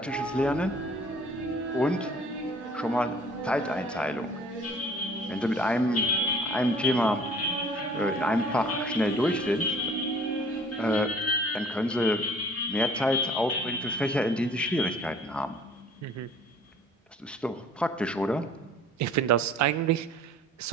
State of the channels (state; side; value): normal; both; correlation 0.52